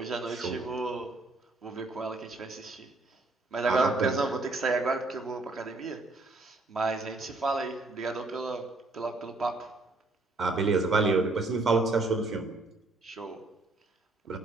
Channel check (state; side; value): quieter; left; 3.1 dB